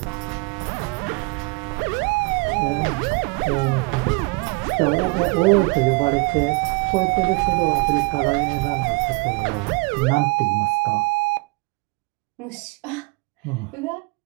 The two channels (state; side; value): quieter; left; 28.3 dB